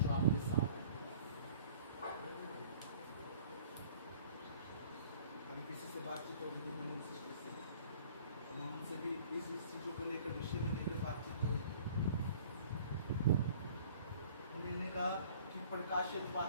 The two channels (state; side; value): inverted; both; correlation -0.51